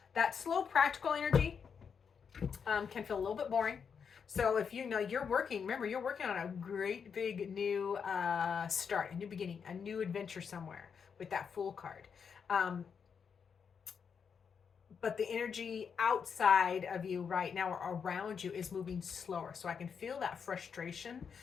that slow practical energy can feel a little bit boring. So if you know you're working, remember you're working on a great big new start, a new beginning, a new adventure somewhere with that Fool card. Um, but the energy outside of you right now or around you is moving slower. So I can feel that frustration.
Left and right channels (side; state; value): right; quieter; 6.6 dB